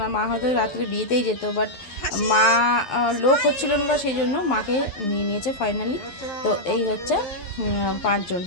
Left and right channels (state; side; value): late; right; 12 ms